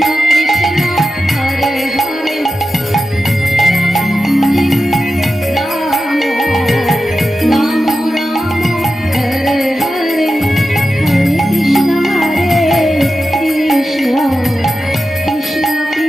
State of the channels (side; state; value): both; normal; correlation 0.91